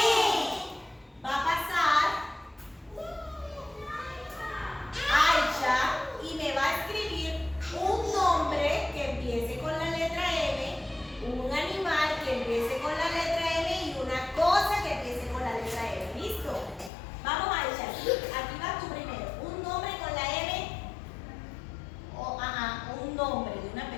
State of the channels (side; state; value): right; drops out; at 16.9 s